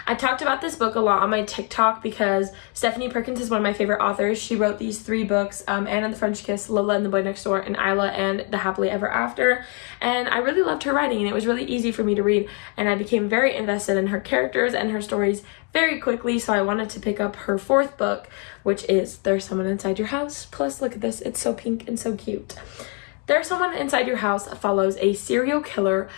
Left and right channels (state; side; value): quieter; right; 36.5 dB